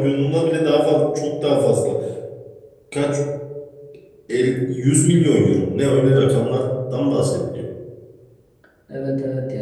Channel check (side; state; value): both; identical; correlation 1.00